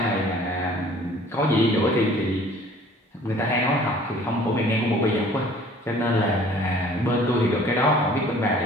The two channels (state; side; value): normal; both; correlation 0.52